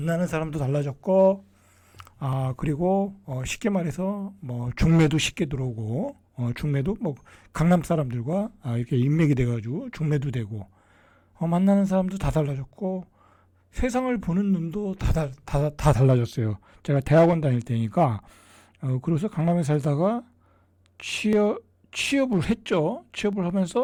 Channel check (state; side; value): identical; both; correlation 1.00